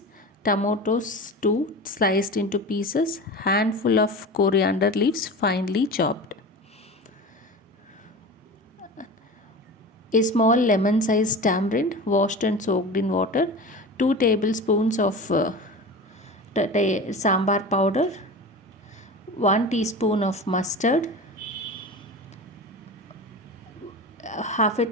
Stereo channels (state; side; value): normal; both; correlation 0.31